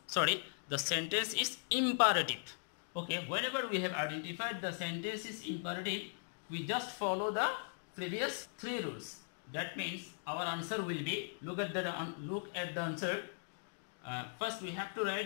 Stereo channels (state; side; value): silent; right; digital silence